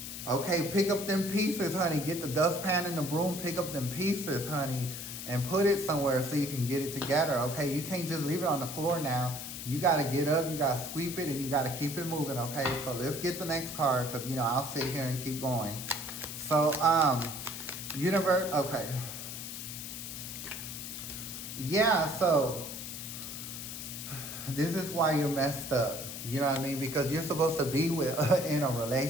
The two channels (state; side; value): noise; left; hiss, 8 dB below the sound